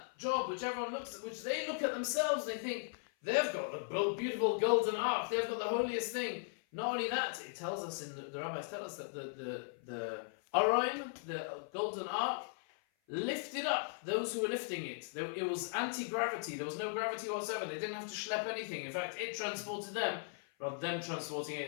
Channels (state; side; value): silent; right; 52 dB below the other